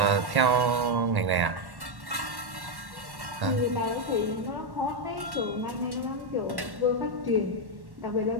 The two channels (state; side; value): late; left; 1.1 ms